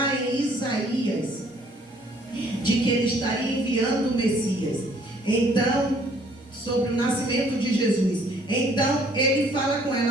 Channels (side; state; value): both; normal; correlation 0.61